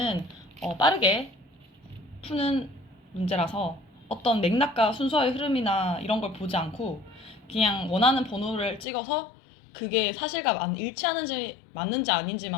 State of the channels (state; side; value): drops out; right; at 8.8 s